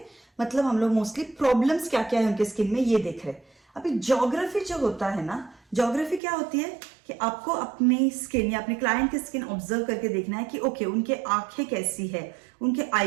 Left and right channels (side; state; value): left; drops out; at 6.2 s